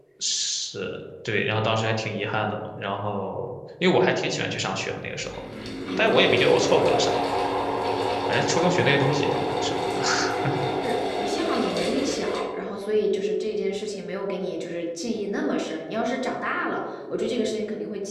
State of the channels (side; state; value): both; identical; correlation 1.00